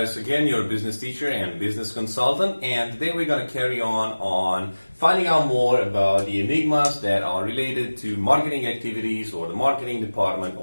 again, your business teacher and business consultant, and today we're going to carry on finding out more about the enigmas that are related to marketing activities or the marketing department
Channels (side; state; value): both; inverted; correlation -1.00